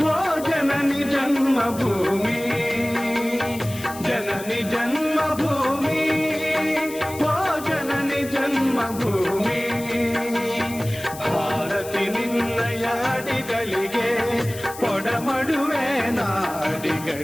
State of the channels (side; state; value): left; noise; hiss, 14 dB below the sound